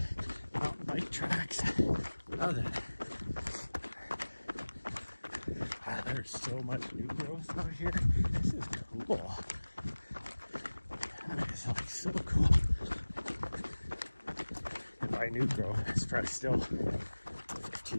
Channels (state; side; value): inverted; both; correlation -1.00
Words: mountain bike tracks, nothing. Wow, there's so much new growth out here. This is cool. That is like so cool. And by new growth, it's probably still